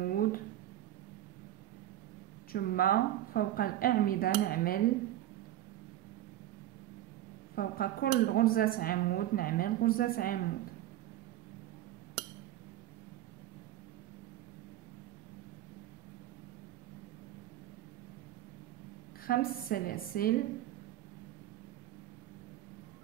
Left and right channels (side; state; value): left; quieter; 13.6 dB